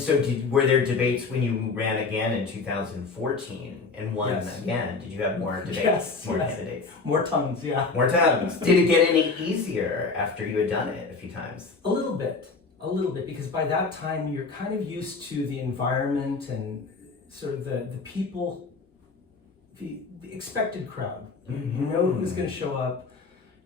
were there debates when you ran again in 2014 and won Yes. again? Did you have more debates? Yes, more yes. candidates? More Tums, yeah. More times. Did it get any easier after you had done it a few times? A little bit, because by that time you're kind of used to the environment and sort of the people, the expected crowd. You know who's going to show up.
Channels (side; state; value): right; quieter; 4.2 dB